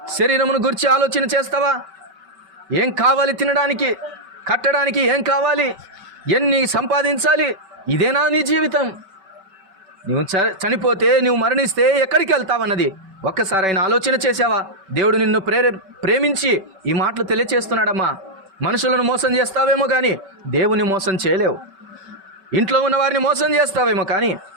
శరీరమును గురించి ఆలోచన చేస్తావా? ఏం కావాలి తినడానికి, కట్టడానికి? ఏం కావాలి? ఎన్ని సంపాదించాలి? ఇదేనా నీ జీవితం? నువ్వు చనిపోతే, నువ్వు మరణిస్తే ఎక్కడికి వెళ్తావన్నది ఒక్కసారి ఆయన ఆలోచన చేసావా? దేవుడు నిన్ను ప్రేమించి ఈ మాటలు తెలియచేస్తున్నాడమ్మా. మనుషులను మోసం చేస్తావేమో కానీ దేవుని మోసం చేయలేవు. ఇంట్లో ఉన్న వారిని మోసం చేస్తావేమో కానీ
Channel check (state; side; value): late; left; 5.3 ms